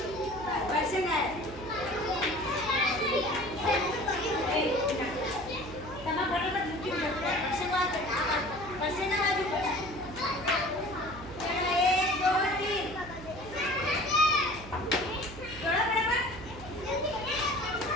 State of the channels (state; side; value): noise; right; hum, 14 dB below the sound